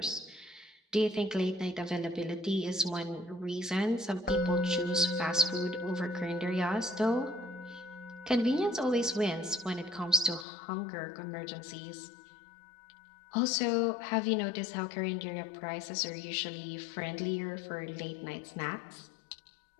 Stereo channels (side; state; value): right; drops out; at 10.5 s